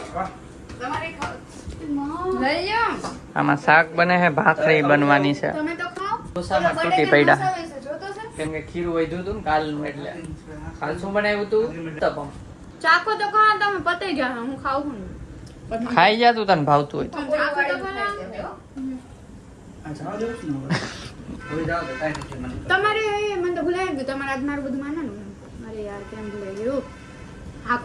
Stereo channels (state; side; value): identical; both; correlation 1.00